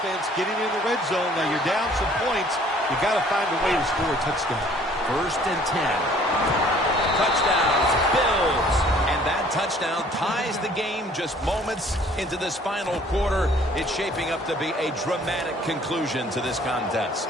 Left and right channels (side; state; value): both; normal; correlation 0.56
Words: getting in the red zone. Now you're down some points. You got to find a way to score a touchdown. 1st and 10. Touchdowns, Bills. And that touchdown ties the game just moments into this final quarter. It's shaping up to be a dramatic conclusion to this contest.